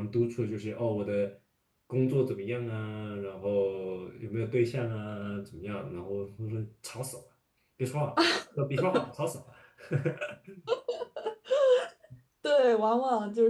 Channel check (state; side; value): identical; both; correlation 1.00